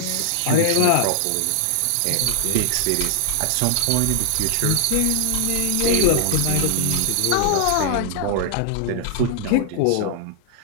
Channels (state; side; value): different; both; correlation 0.00